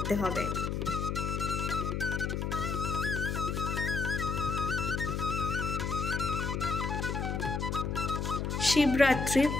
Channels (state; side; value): noise; left; hum, 1 dB below the sound